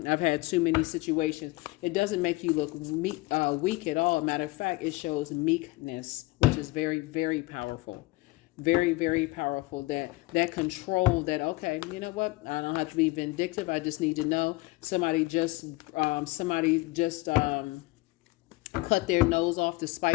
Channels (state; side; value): quieter; right; 21.3 dB